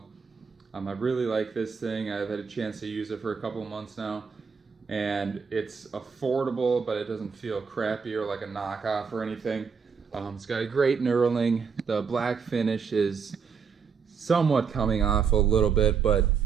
I really like this thing. I've had a chance to use it for a couple of months now, and it's affordable, but it doesn't feel crappy or like a knockoff or anything. It's got a great knurling. The black finish is somewhat coming off a little bit, but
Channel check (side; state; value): left; quieter; 6.1 dB